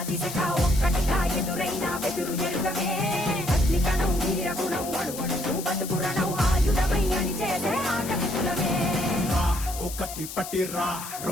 ఒక్కటిగా ఎదురైన బెదురు ఎరుగమే అగ్నికణం వీరగుణం అణువణువు బతుకురణం ఆయుధమై అని చేసే ఆటవికులమే ఒకటి పట్టిరా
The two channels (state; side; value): noise; left; hiss, 10 dB below the sound